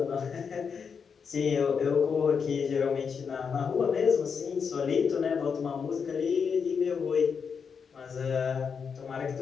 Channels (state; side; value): quieter; right; 6.2 dB